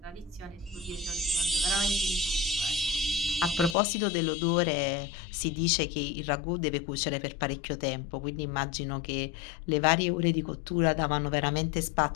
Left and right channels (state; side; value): drops out; right; at 3.8 s